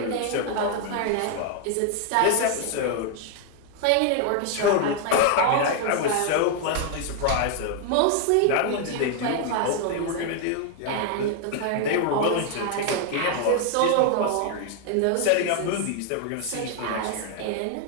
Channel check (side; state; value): both; different; correlation 0.00